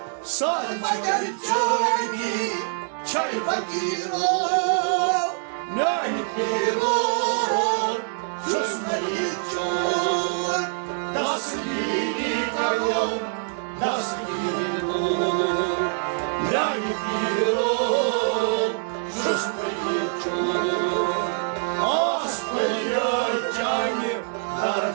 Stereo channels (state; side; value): silent; left; 62 dB below the other